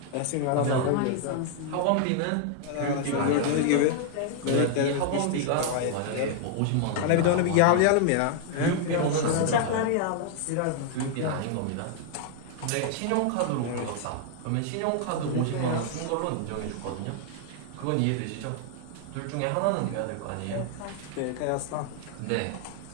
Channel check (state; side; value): different; both; correlation 0.00